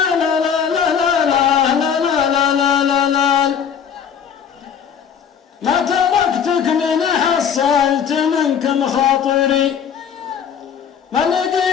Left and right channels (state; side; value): quieter; right; 7.7 dB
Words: ما تركتك من حصلت منكم خاطري، ما